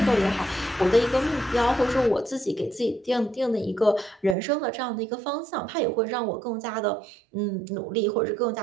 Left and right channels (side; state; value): left; drops out; at 4.4 s